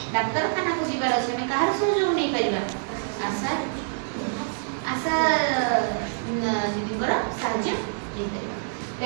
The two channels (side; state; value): left; silent; digital silence